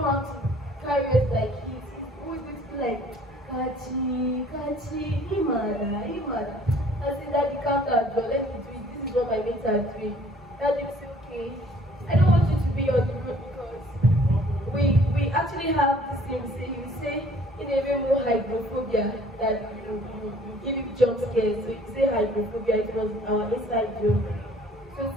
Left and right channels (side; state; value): both; normal; correlation 0.56